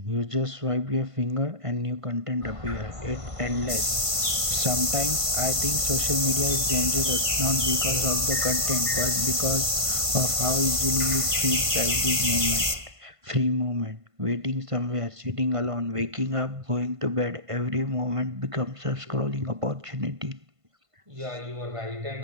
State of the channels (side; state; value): left; late; 1.5 ms